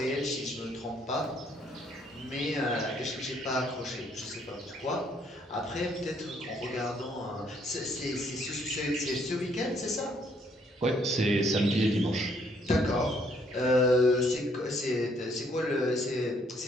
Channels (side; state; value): both; normal; correlation 0.67